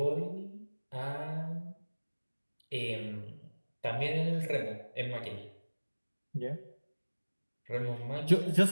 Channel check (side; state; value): both; inverted; correlation -1.00